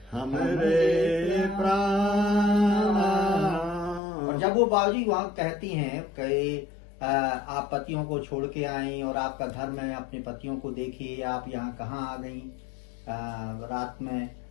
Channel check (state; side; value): drops out; right; at 4.0 s